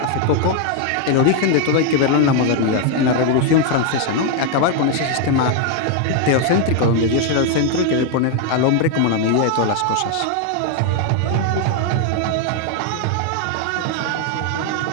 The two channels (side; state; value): both; different; correlation 0.01